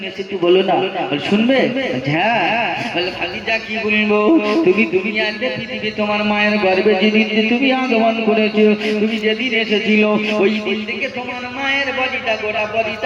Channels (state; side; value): identical; both; correlation 1.00